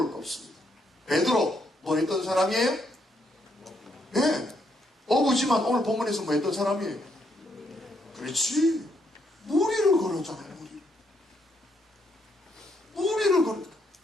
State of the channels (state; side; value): normal; both; correlation 0.75